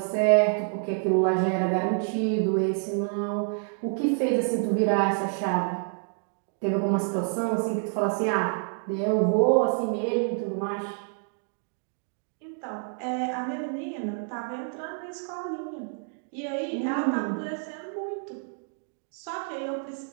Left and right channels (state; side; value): silent; left; 59 dB below the other